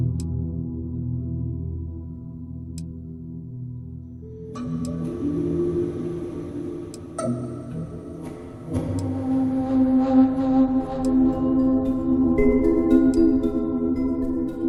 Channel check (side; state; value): both; identical; correlation 1.00